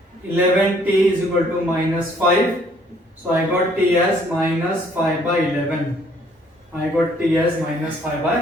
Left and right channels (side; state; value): both; normal; correlation 0.62